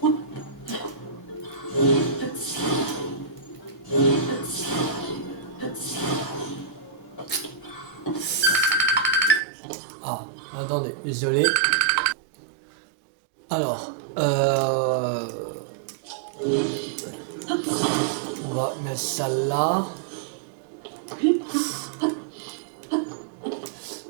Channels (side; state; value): left; drops out; at 9.4 s